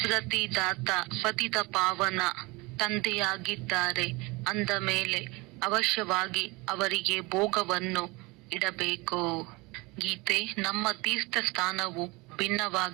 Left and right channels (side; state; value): left; quieter; 24.7 dB